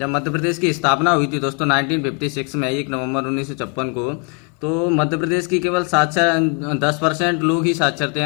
मध्य प्रदेश की स्थापना हुई थी दोस्तों 1956 में 1 नवंबर 1956 को, तो मध्य प्रदेश की केवल 10% लोग ही साक्षर थे,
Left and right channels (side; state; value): right; quieter; 37.1 dB